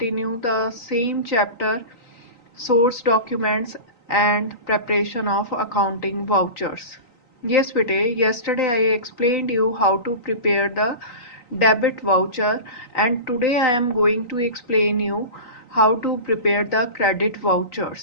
the same chapter, source documents and preparation of accounting vouchers. Yes bete, yesterday I explained you how to prepare the debit voucher, and today I am going to explain you how to prepare the credit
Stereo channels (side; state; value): right; late; 3.9 ms